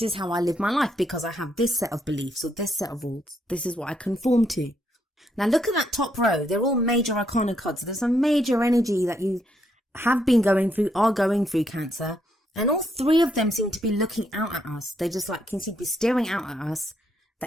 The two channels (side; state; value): both; normal; correlation 0.75